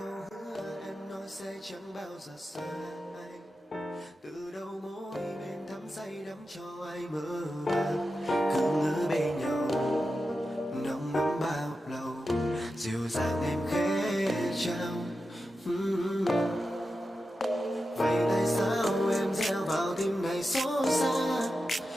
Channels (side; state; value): both; normal; correlation 0.91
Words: hứa em nói sẽ chẳng bao giờ xa anh. Từ đầu môi bên thắm say đắm cho ai mơ màng. Cứ ngỡ bên nhau nồng nắm bao lâu. Dịu dàng em khẽ trao. Vậy tại sao em gieo vào tim này xót xa?